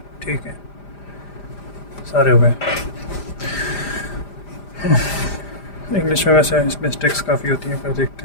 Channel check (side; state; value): right; late; 5.0 ms